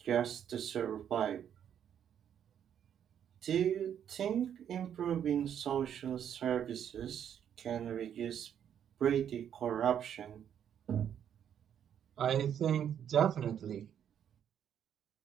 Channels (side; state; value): left; quieter; 9.1 dB